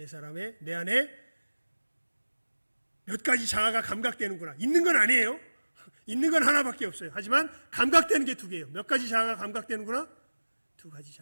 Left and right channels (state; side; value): inverted; both; correlation -1.00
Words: 안에 몇 가지 자아가 감각되는구나. 있는 건 아니에요. 있는 건 하나밖에 없어요. 하지만 감각되는 게 두 개예요. 몇 가지 자아가 감각되는구나? 두 가지